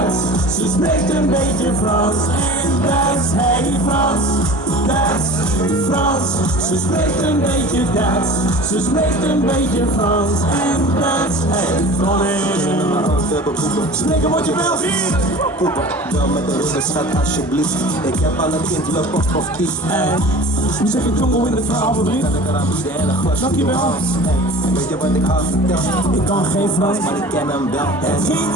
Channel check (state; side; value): normal; both; correlation 0.40